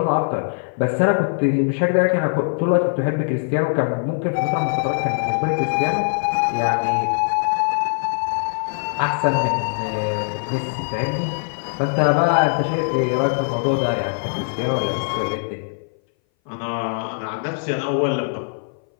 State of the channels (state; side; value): silent; right; 60 dB below the other